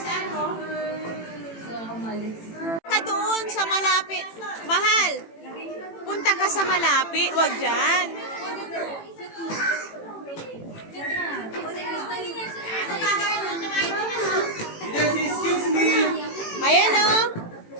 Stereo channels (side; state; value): right; late; 18 ms